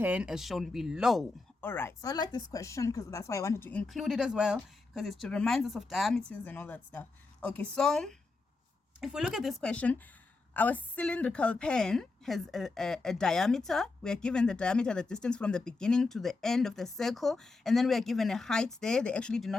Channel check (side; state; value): right; quieter; 3.7 dB